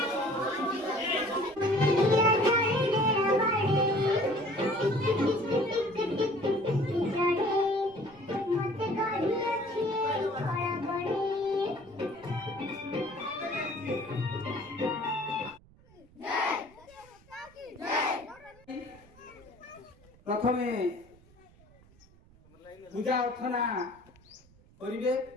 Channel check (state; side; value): noise; right; rumble, 27 dB below the sound